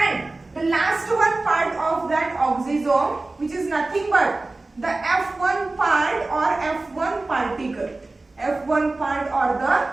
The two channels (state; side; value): quieter; left; 3.1 dB